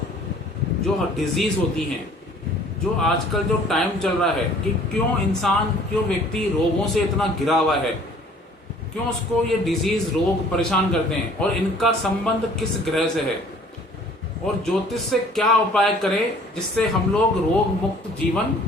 जो डिजीज होती हैं, जो आजकल जो टाइम चल रहा है कि क्यों व्यक्ति रोगों से इतना घिरा हुआ है, क्यों उसको ये डिजीज रोग परेशान करते हैं और इनका संबंध किस ग्रह से है और ज्योतिष से क्या उपाय करें जिससे हम लोग रोग मुक्त जीवन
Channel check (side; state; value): both; normal; correlation 0.53